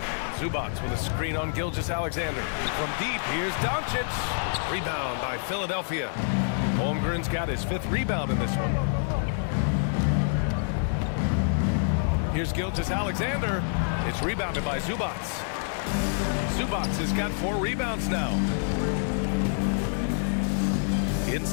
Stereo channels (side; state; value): right; silent; digital silence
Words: Zubac with a screen on Gilgeous-Alexander. From deep, here's Doncic. Rebound by Philadelphia. Holmgren's got his 5th rebound in this one. Here's Gilgeous-Alexander. It's rebounded by Zubac. Zubac has got 4 rebounds now.